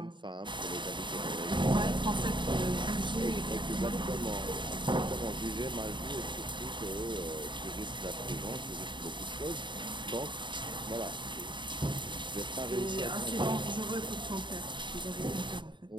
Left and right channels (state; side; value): late; left; 0.23 ms